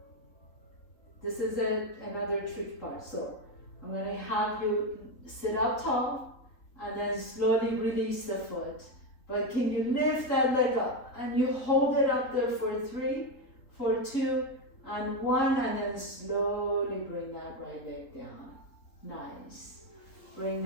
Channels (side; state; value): right; late; 3.7 ms